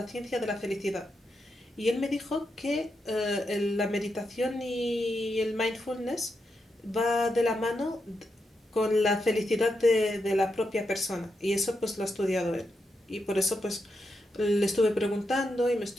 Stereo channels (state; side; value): normal; both; correlation 0.85